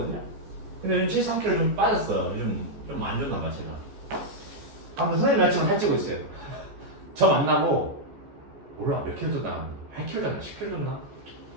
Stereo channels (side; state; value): left; late; 14 ms